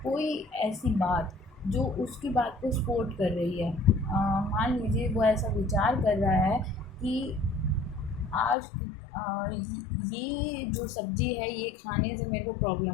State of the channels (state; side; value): drops out; right; at 8.6 s